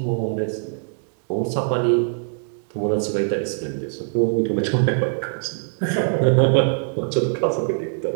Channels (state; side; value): silent; left; digital silence